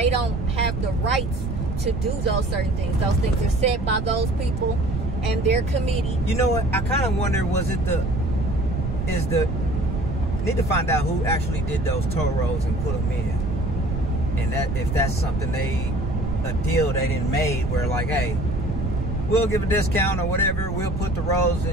don't have the rights to do those certain things. Those things are set by those people and their committee. You know what? I kind of wonder, need to find out who actually did those toll roads and put them in, and that if that's something a deal they didn't made where like, hey, we'll give a discount or whatever, we'll put the roads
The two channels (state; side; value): noise; right; rumble, 4 dB below the sound